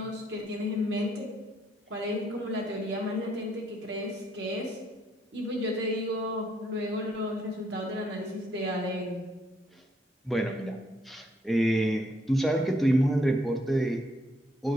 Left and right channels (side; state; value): both; normal; correlation 0.71